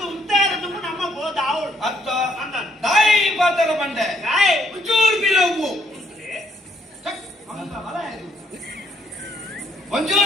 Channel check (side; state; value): both; normal; correlation 0.71